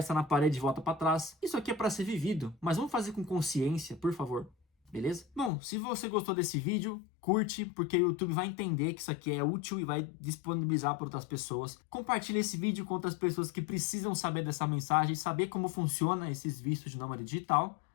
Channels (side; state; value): right; drops out; at 5.5 s